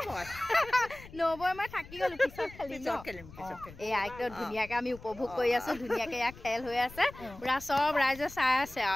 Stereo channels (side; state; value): left; noise; rumble, 18 dB below the sound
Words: মই নবৌ মই থাকি গ'লোঁ পিছত খেলিম এয়া একদম ধুনীয়াকৈ আমি উপভোগ কৰি আছোঁ ধুনীয়াকৈ এয়া খেল হৈ আছে পূৰা চব ৰাইজে চাই আছে